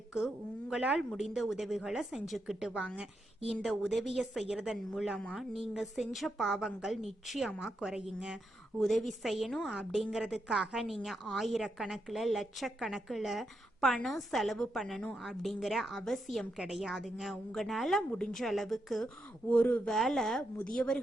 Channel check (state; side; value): normal; both; correlation 0.83